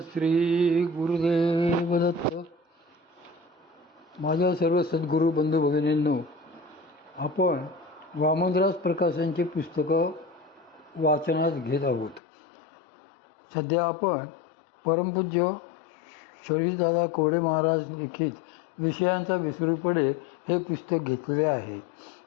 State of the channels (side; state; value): right; drops out; at 12.2 s